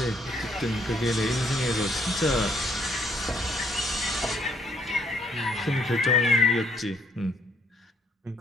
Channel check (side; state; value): both; normal; correlation 0.68